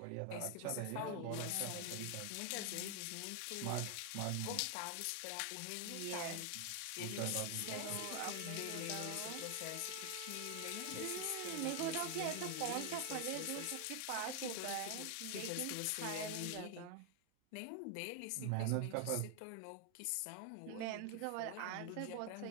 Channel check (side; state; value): both; different; correlation 0.00